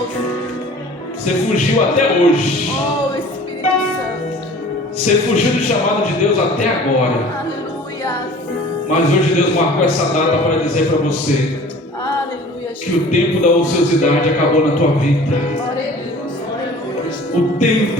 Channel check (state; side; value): normal; both; correlation 0.46